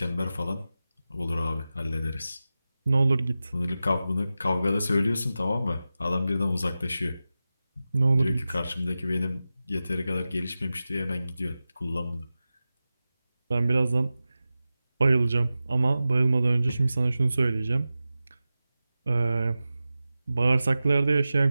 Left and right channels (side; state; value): both; inverted; correlation -0.94